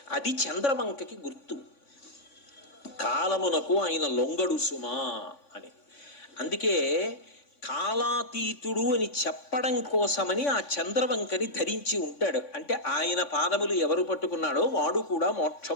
అది చంద్రవంకకి గుర్తు. కాలమునకు ఆయన లొంగడు సుమా అని. అందుకే కాలాతీతుడు అని చెప్పడం కోసమని ఆ చంద్రవంకని ధరించి ఉంటాడు. అంటే ఆయన పాదములు ఎవరు పట్టుకున్నాడో వాడు కూడా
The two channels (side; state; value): right; late; 3.5 ms